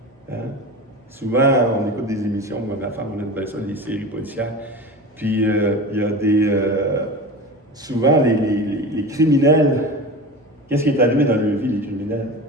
Hein? Souvent, on écoute des émissions, moi, ma femme, on aime bien ça, des séries policières. Puis il y a des. Souvent, les criminels, qu'est-ce qui est arrivé dans leur vie, les criminels?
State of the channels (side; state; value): both; normal; correlation 0.31